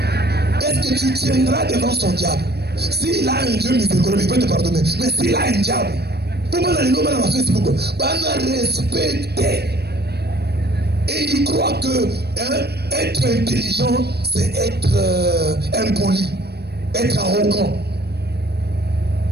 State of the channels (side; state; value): left; late; 0.47 ms